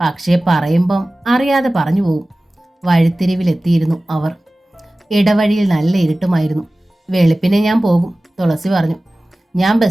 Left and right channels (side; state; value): both; normal; correlation 0.97